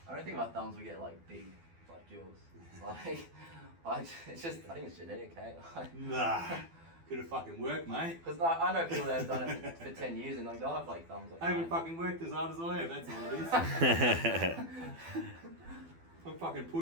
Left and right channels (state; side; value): late; left; 12 ms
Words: I don't think my thumbs will get like big like yours. Like, it's just, I think it's genetic, eh? Nah. Could have fucking worked, mate. Because like, I know people that have done it for 10 years and like, they'll have like thumbs like I haven't mine. fucking worked as hard as I have, that's all it is. I'm fucking